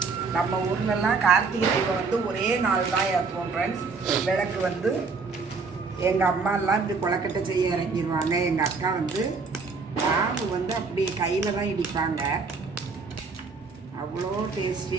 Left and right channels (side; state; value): left; quieter; 4.6 dB